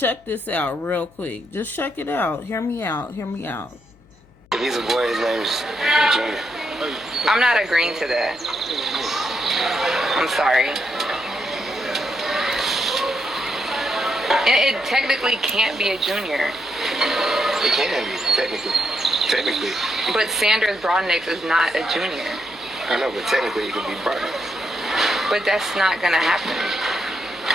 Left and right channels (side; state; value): left; noise; hum, 29 dB below the sound